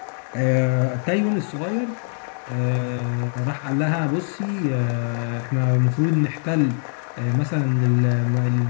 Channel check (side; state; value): right; silent; 62 dB below the other